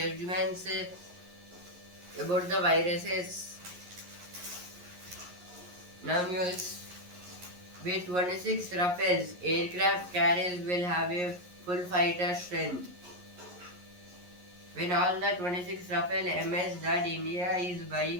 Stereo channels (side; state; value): left; late; 11 ms